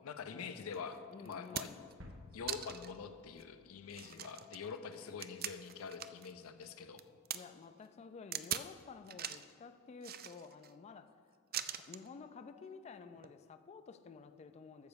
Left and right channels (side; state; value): both; normal; correlation 0.03